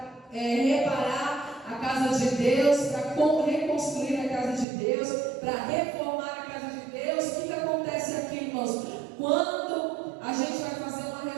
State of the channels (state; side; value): drops out; left; at 4.7 s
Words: reparar a casa de Deus, para reconstruir a casa de Deus, para reformar a casa de Deus? O que acontece aqui, irmãos? Quando a gente vai fazer uma